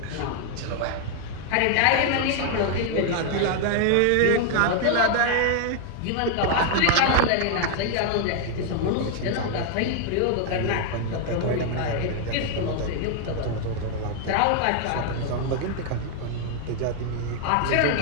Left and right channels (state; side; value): different; both; correlation 0.00